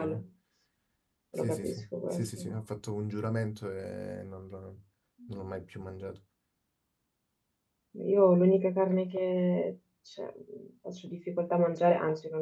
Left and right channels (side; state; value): both; identical; correlation 1.00